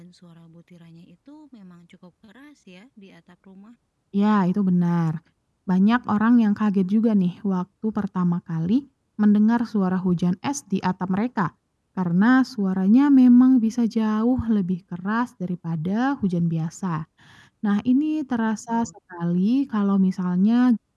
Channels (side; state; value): both; identical; correlation 1.00